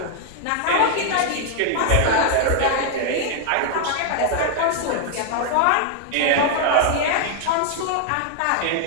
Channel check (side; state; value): both; different; correlation 0.00